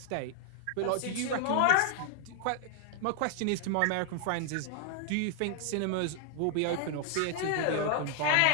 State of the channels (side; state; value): both; different; correlation 0.00